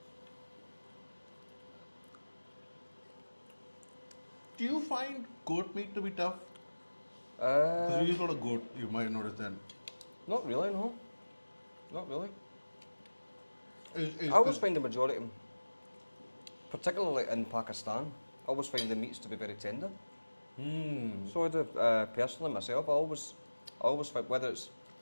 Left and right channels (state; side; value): inverted; both; correlation -1.00